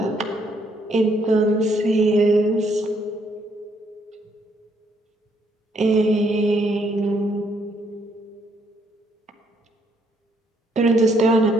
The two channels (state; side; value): normal; both; correlation 0.71